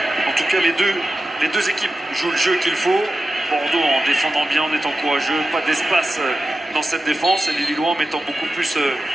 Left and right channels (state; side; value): normal; both; correlation 0.92